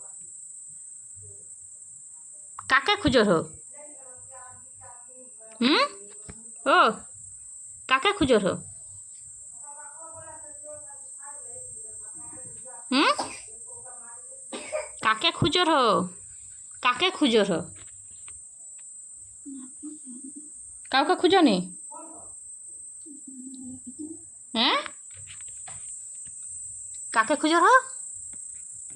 কাকে খুঁজো হো? ও কাকে খুঁজো হো? কাকে খুঁজো হো? কাকে খুঁজো হো? কাউকে খুঁজো নি? হ্যাঁ, কাকে খুঁজো হো?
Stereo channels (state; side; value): identical; both; correlation 1.00